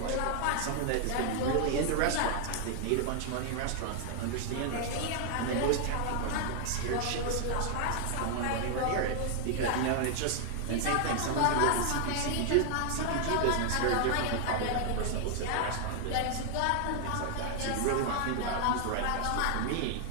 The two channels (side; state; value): both; different; correlation 0.00